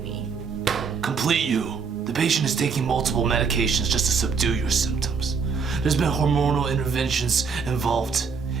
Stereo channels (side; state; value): left; quieter; 5.5 dB